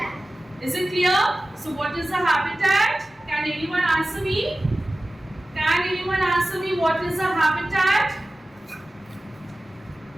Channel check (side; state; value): both; normal; correlation 0.96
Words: Is it clear? So what is a habitat? Can anyone answer me? Can anyone answer me what is a habitat?